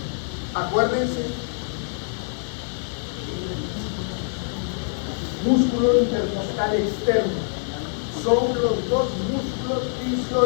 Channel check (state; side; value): silent; right; 62 dB below the other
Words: Acuérdense. Músculo intercostal externo. Son los dos músculos